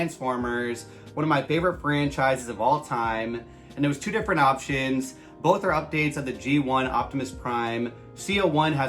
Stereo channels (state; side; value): identical; both; correlation 1.00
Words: one of my favorite franchises of all time. And there was two different options. Both are updates of the G1 Optimus Prime. C-01